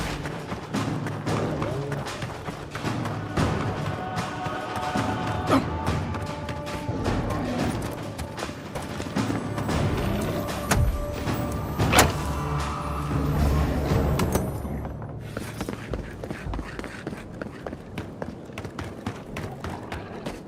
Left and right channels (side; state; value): both; identical; correlation 1.00